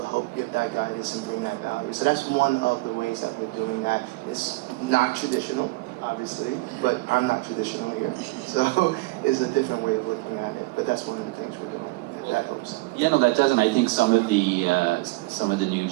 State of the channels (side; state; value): left; quieter; 22.9 dB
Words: help give that guidance and bring that value. So that's one of the ways that we're doing that. It's not traditional, obviously, but I'm not traditional here. So it's a different way of looking at it. But that's one of the things we're doing, if that helps. Yeah, no, that does, and I think some of the new